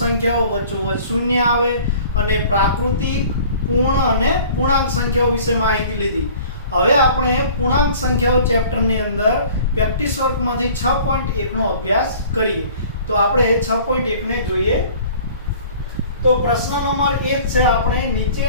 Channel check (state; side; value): inverted; both; correlation -0.49